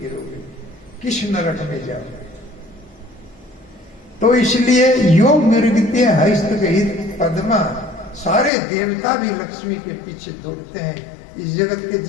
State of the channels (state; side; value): drops out; right; at 8.5 s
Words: गिरोगे, किस नरक में जाओगे? तो इसलिए योग मृगते हस्तगहित पद्मा, सारे देवता भी लक्ष्मी के पीछे दौड़ते हैं। इस जगत के